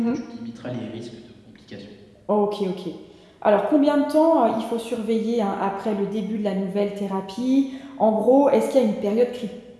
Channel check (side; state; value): both; identical; correlation 1.00